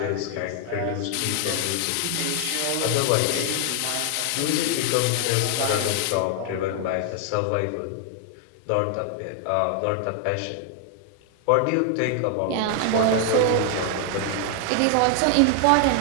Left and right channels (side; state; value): both; different; correlation 0.00